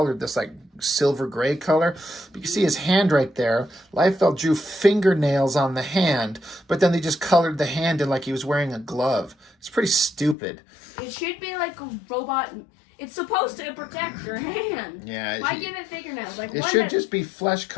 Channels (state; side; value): drops out; right; at 10.4 s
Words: this, silver gray color. But you can see his hand right there. Liefeld drew fingernails on the hand, but then they just colored the hand in like he was wearing a glove. It's pretty stupid. It should be like a robot. It's supposed to protect your hand. Yeah. Why give it fingernails? It should just be flesh